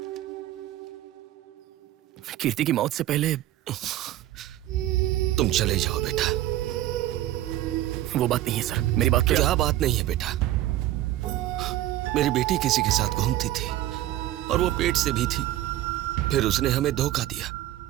कीर्ति की मौत से पहले तुम चले जाओ बेटा। वो बात नहीं है सर, मेरी बात क्या बात नहीं है बेटा? मेरी बेटी किसी के साथ घूमती थी और वो पेट से भी थी, फिर उसने हमें धोखा दिया।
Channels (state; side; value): quieter; left; 14.2 dB